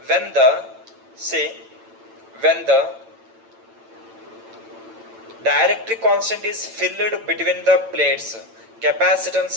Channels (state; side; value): late; left; 8.9 ms